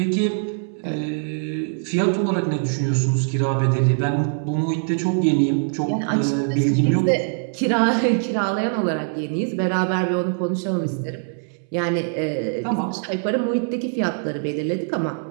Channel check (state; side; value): silent; left; 64 dB below the other